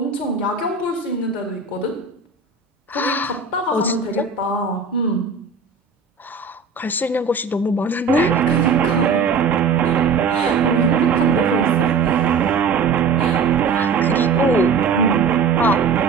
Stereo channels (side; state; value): left; quieter; 5.0 dB